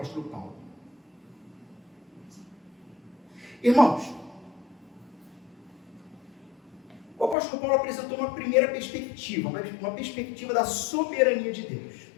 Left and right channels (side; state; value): right; drops out; at 7.4 s